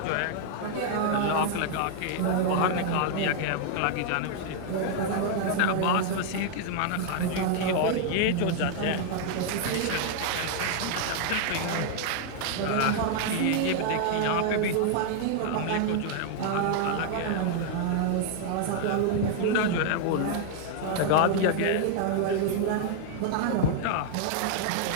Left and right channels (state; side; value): different; both; correlation -0.01